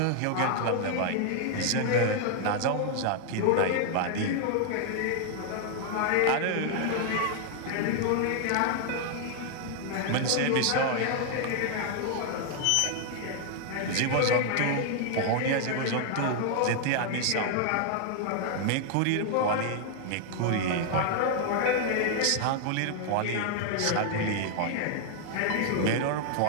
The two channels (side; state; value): both; different; correlation 0.00